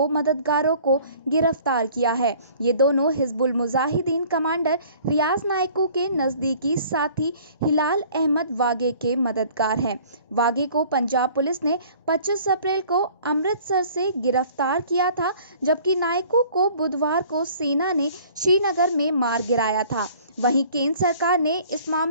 मददगारों को गिरफ्तार किया है। ये दोनों हिजबुल मुजाहिदीन कमांडर रियाज नायको के नज़दीकी साथी हिलाल अहमद वागे के मददगार हैं। वागे को पंजाब पुलिस ने 25 अप्रैल को अमृतसर से गिरफ्तार किया था, जबकि नायको को बुधवार को सेना ने श्रीनगर में मार गिराया था। वहीं केंद्र सरकार ने इस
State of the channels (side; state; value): both; inverted; correlation -0.52